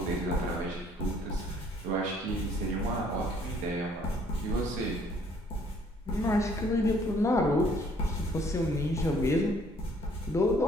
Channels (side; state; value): both; normal; correlation 0.61